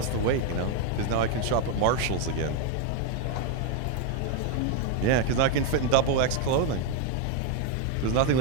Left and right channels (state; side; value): different; both; correlation 0.01